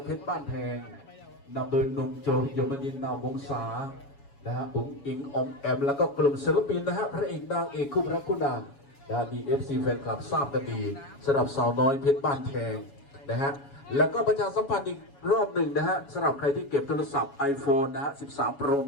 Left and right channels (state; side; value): late; right; 7.2 ms